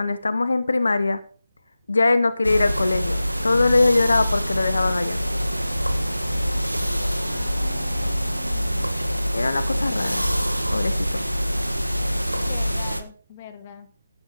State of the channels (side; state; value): both; inverted; correlation -0.96